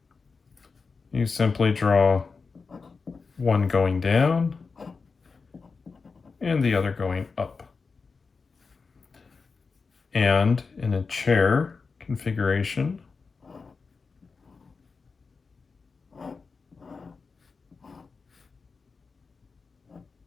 you simply draw one going down and the other going up. And in a chair configuration,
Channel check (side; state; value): right; quieter; 4.7 dB